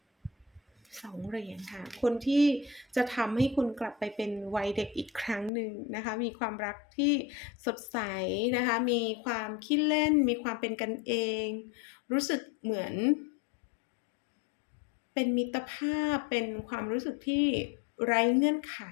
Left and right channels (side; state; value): right; drops out; at 5.5 s